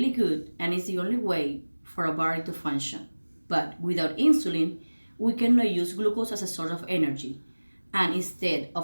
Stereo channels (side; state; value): both; inverted; correlation -1.00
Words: good, and it's the only way for our body to function. But without insulin, we cannot use glucose as a source of energy, and instead